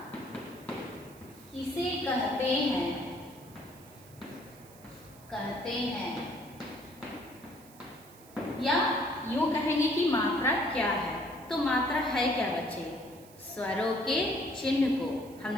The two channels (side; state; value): right; noise; hiss, 23 dB below the sound